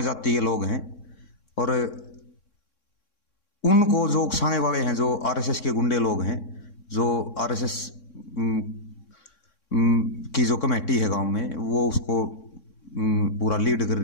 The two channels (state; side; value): late; right; 3.6 ms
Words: जाति के लोग हैं और उनको जो उकसाने वाले हैं जो आरएसएस के गुंडे लोग हैं, जो आरएसएस की जो कमेटी है गांव में वो उसको पूरा लीड कर